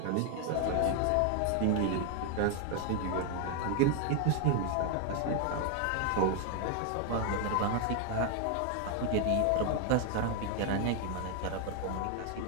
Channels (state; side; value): different; both; correlation 0.01